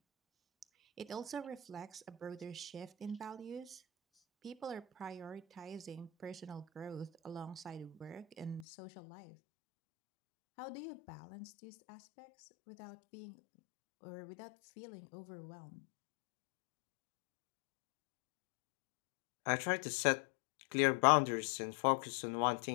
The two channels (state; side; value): drops out; right; at 8.7 s